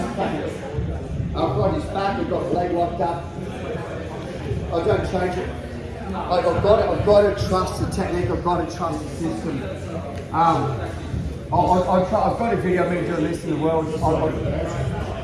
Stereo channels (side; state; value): both; identical; correlation 1.00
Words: I've got his back. I've got the leg locked up. I don't change it. Like I've got to trust the technique. I've got to trust the system. I've got a video of me doing this in the world. Just on